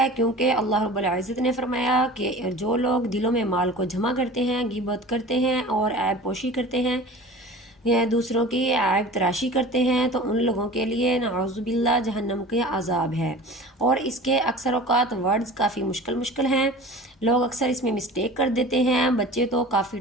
کیونکہ اللہ رب العزت نے فرمایا کہ جو لوگ دلوں میں مال کو جمع کرتے ہیں، غیبت کرتے ہیں اور عیب پوشی کرتے ہیں یا دوسروں کی عیب تراشی کرتے ہیں تو ان لوگوں کے لیے نعوذ باللہ جہنم کے عذاب ہے۔ اور اس کے اکثر اوقات ورڈز کافی مشکل ہیں، لوگ اکثر اس میں مسٹیک کر دیتے ہیں، بچے تو کافی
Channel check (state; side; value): normal; both; correlation 0.39